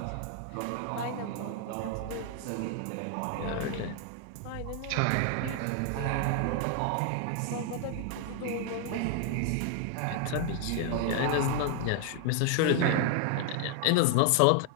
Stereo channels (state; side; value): different; both; correlation 0.00